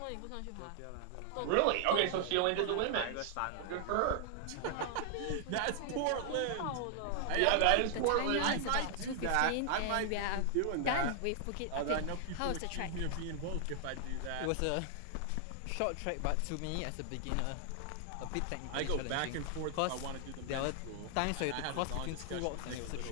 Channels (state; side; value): different; both; correlation 0.00